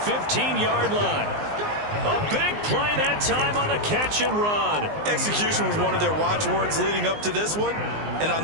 line. A big play that time on the catch and run. Execution was one of their watchwords leading up to this one. And on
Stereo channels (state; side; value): late; left; 19 ms